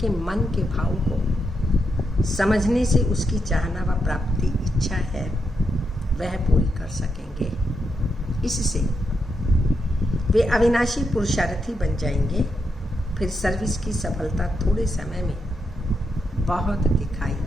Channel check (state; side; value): normal; both; correlation 0.83